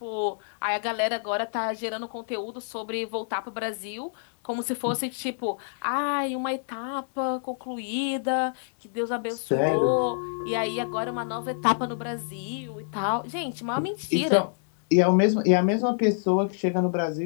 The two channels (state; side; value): silent; right; digital silence